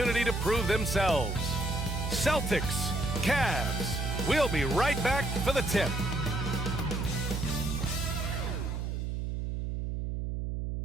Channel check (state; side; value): noise; right; hum, 2 dB below the sound